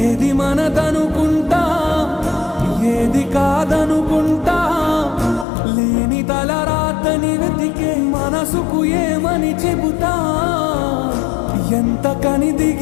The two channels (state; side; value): drops out; right; at 5.5 s